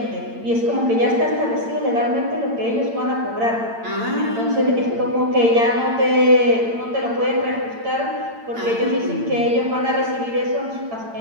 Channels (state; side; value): late; left; 8.8 ms